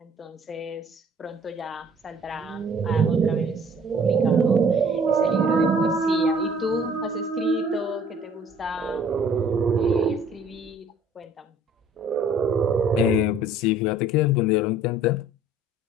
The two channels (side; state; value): both; normal; correlation 0.54